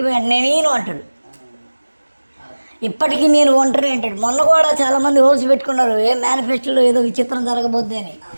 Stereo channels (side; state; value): both; inverted; correlation -1.00